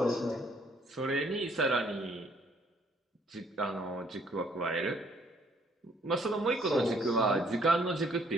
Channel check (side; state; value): both; normal; correlation 0.65